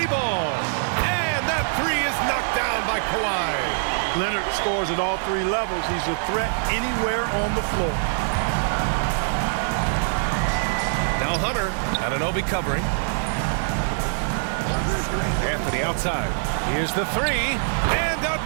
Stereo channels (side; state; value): left; silent; 61 dB below the other